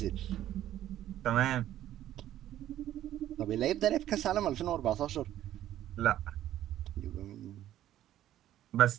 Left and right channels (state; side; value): quieter; left; 12.6 dB